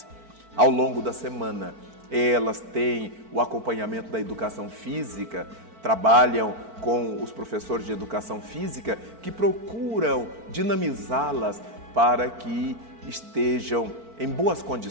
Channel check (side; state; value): left; late; 4.5 ms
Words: Ao longo da semana, elas têm o acompanhamento da educação física, trabalham com os professores de educação física que procuram dinamizá-las para que estejam em boas